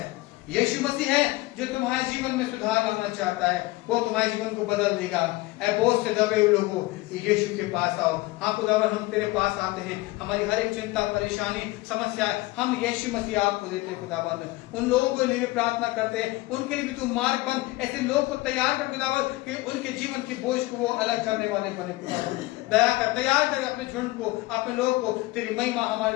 यीशु मसीह है जो तुम्हारे जीवन में सुधार लाना चाहता है। वो तुम्हारे जीवन को बदल देगा। ऐ बोझ से दबे हुए लोगों, यीशु के पास आओ। हाँ खुदावन, हम तेरे पास आते हैं। हमारी हर एक चिंता, परेशानी, समस्या हम यीशु मसीह आपको देते हैं खुदावन। उन लोगों के लिए भी प्रार्थना करते हैं, उनके लिए भी तू मार्ग बन। ऐसे लोग को तैयार कर खुदावन कि उनके जीवन की बोझ को वो अलग करने वाले बने खुदावन। दया कर, तैयार कर अपने झुंड को, अपने लोग को। तेरी महिमा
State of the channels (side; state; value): right; quieter; 20.3 dB